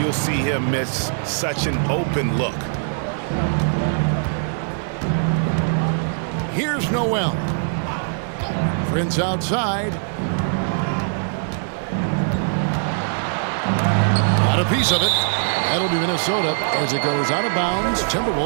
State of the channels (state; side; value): silent; left; 60 dB below the other